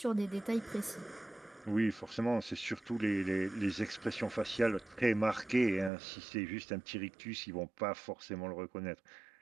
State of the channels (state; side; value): drops out; left; at 5.9 s